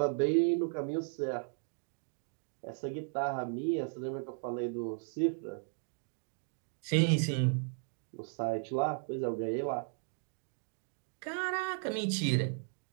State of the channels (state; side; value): silent; left; 54 dB below the other